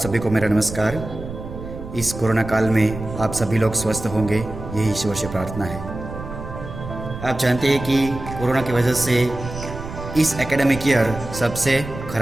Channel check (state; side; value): noise; right; rumble, 10 dB below the sound